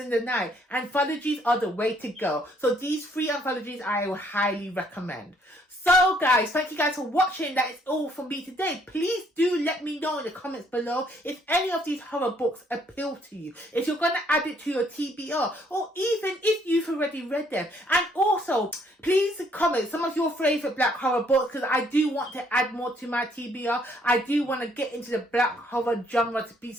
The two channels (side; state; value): both; normal; correlation 0.66